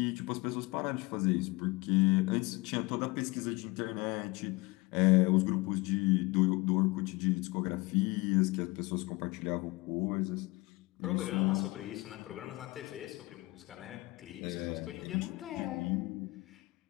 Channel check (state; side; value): quieter; right; 23.4 dB